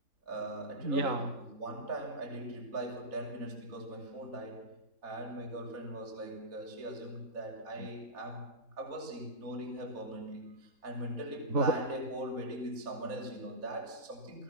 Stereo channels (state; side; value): late; left; 3.5 ms